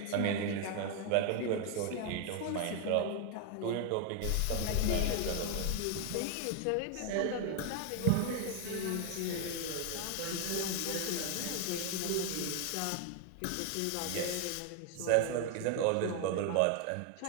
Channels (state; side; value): different; both; correlation 0.00